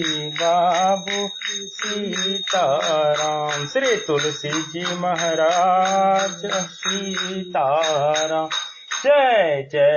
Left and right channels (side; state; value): both; identical; correlation 1.00